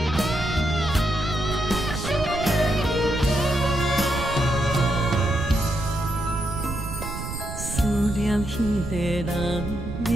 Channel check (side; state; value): right; noise; rumble, 7 dB below the sound